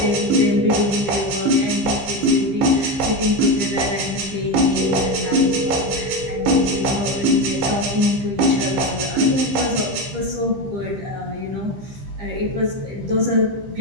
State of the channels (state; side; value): late; left; 15 ms